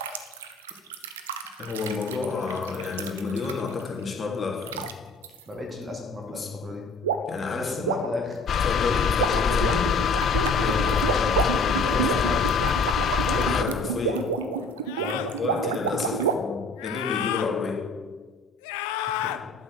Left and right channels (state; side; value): quieter; right; 3.1 dB